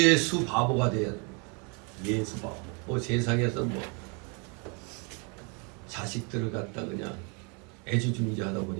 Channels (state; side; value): quieter; left; 34.1 dB